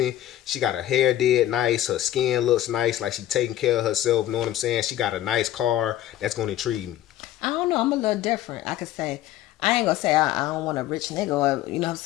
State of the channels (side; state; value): right; quieter; 13.2 dB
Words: she got her hair did nice, her skin looks nice, like she taking care of herself, know what I'm saying, she got a nice car, that's gonna intrigue me. I don't know. I'm a little different. I could say, I ain't gonna say I don't want a rich nigga or, you know what I'm